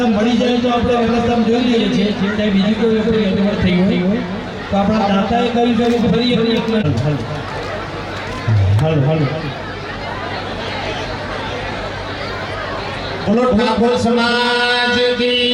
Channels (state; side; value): identical; both; correlation 1.00